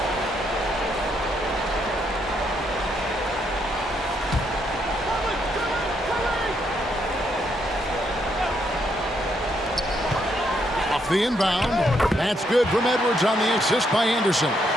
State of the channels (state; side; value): normal; both; correlation 0.75